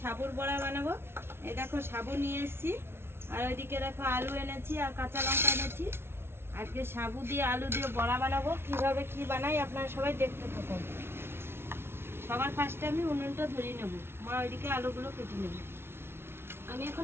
বড়া বানাবো। এই দেখো সাবু নিয়ে এসেছি, আর ওইদিকে দেখো আলু এনেছি আর কাঁচা লঙ্কা এনেছি। আজকে সাবু দিয়ে আলু দিয়ে বড়া বানাবো। কিভাবে কি বানাই আপনারা সবাই দেখতে থাকুন। সবার ফার্স্টে আমি উনুনটা ধরিয়ে নেব। মা ওইদিকে আলুগুলো কেটে নেব। আমি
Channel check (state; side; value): late; left; 0.12 ms